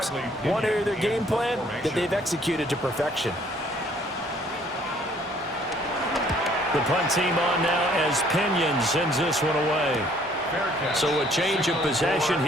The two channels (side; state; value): both; normal; correlation 0.60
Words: One area of their game plan that they've executed to perfection. The punt team on now as Pinion sends this one away. So a change of possession